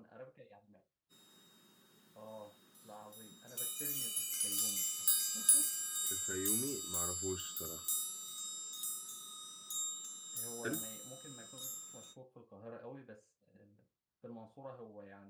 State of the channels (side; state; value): both; identical; correlation 1.00